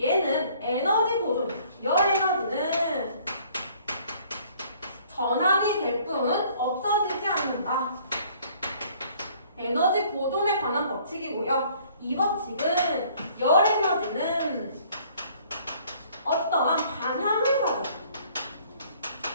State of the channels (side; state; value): both; inverted; correlation -0.58